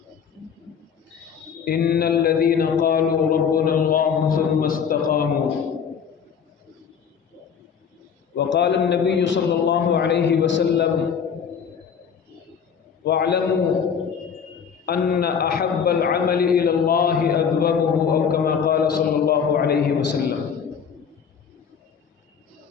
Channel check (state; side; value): quieter; right; 7.0 dB